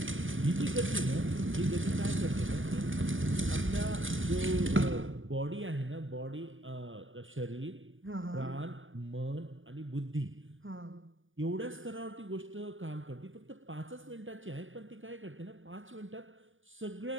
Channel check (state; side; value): late; left; 0.57 ms